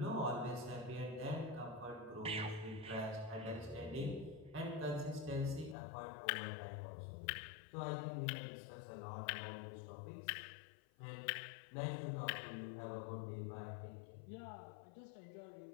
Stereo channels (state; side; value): drops out; right; at 5.8 s